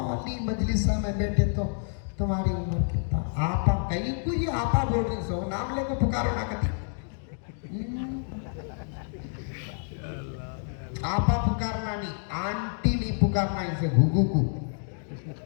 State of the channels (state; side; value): silent; right; 59 dB below the other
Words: मजलिसा में बैठे तो तुम्हारी उम्र कितना, आपा कहीं को ये आपा बोल रही सो, नाम लेकर पुकारो ना कभी। आपा पुकारना नहीं, आंटी नहीं पुकारना, इसे घुघू को